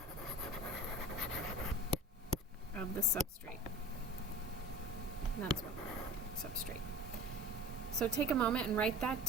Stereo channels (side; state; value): both; normal; correlation 0.40